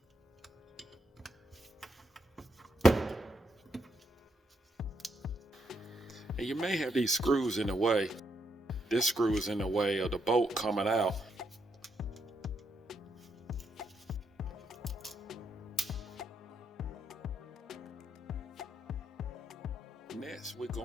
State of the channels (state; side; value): normal; both; correlation 0.77